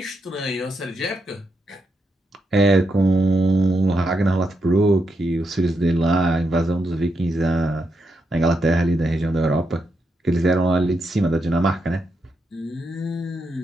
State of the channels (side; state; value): both; normal; correlation 0.83